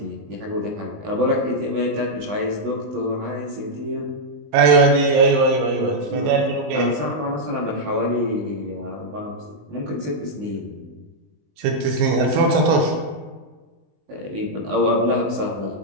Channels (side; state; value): left; late; 19 ms